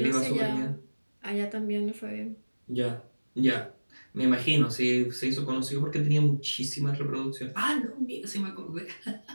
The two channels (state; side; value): inverted; both; correlation -1.00